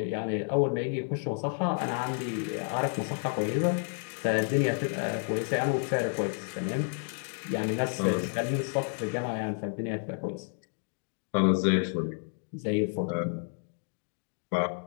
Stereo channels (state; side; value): silent; right; 57 dB below the other